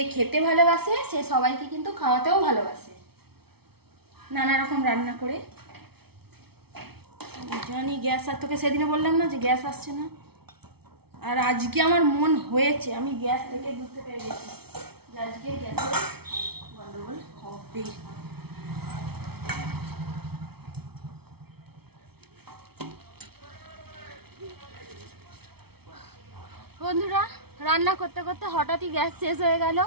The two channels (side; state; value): left; late; 0.96 ms